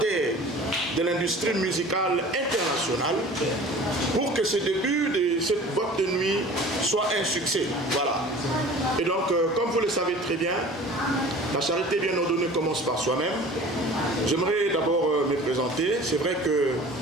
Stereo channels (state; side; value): normal; both; correlation 0.43